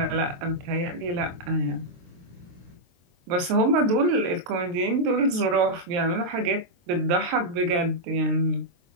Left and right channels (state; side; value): late; left; 23 ms